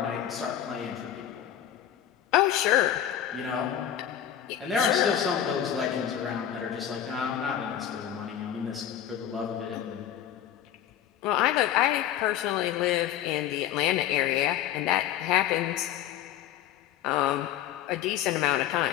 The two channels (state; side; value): quieter; right; 10.7 dB